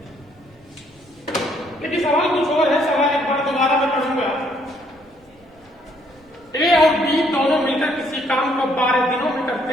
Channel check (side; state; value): both; normal; correlation 0.67